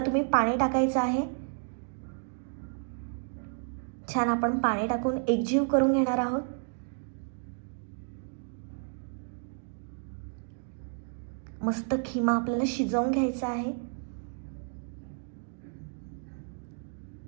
तुम्ही पाणी टाकायचं आहे. छान आपण पाणी टाकून एकजीव करून घेणार आहोत. मस्त खिमा आपल्याला शिजवून घ्यायचा आहे.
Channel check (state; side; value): silent; left; 57 dB below the other